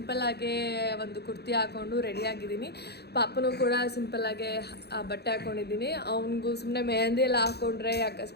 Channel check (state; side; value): late; right; 0.48 ms